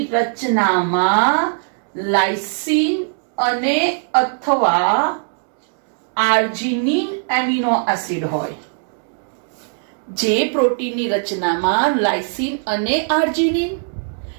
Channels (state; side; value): silent; left; 66 dB below the other